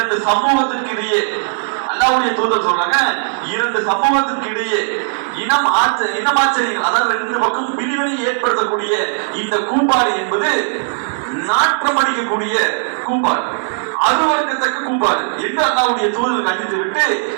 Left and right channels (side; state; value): left; silent; digital silence